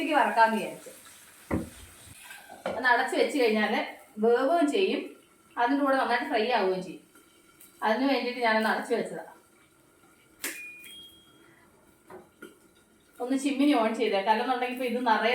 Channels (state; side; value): identical; both; correlation 1.00